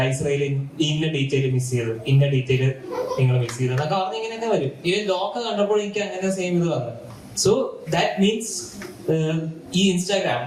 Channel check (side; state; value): both; identical; correlation 1.00